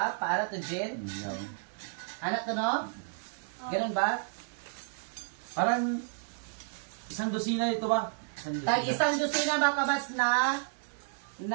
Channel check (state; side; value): silent; left; digital silence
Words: Paara to Jen? Yan. Anak to no? Ganun ba? Parang isang dosina ito ba? Tag isang dosina mga kabas